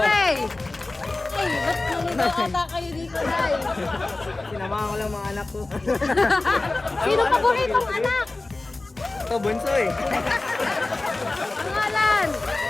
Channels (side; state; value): right; quieter; 3.1 dB